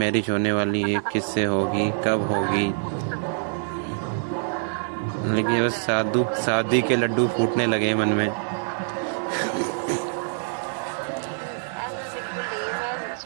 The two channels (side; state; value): left; silent; digital silence